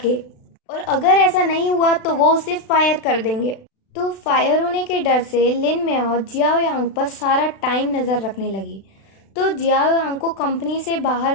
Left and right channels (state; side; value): late; right; 36 ms